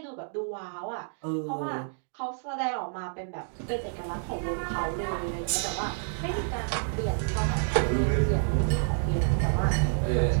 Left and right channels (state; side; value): silent; left; digital silence